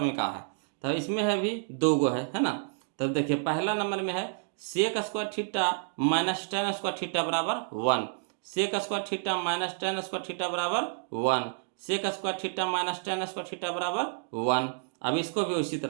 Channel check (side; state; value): left; silent; digital silence